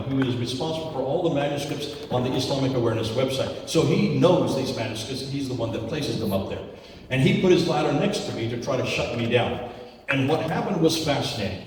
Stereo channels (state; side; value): identical; both; correlation 1.00